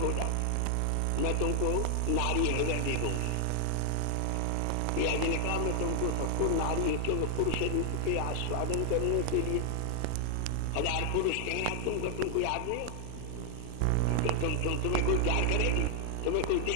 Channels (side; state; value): both; different; correlation 0.00